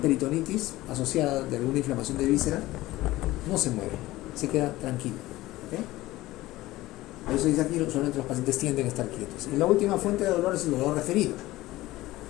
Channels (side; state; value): right; quieter; 17.6 dB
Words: peritonitis asociada de alguna inflamación de víscera no se mueve, se queda tranquilo. ¿Ok? Por eso dice aquí, solamente los pacientes tienden a estar quietos. Y la última fuente de dolor es el dolor referido.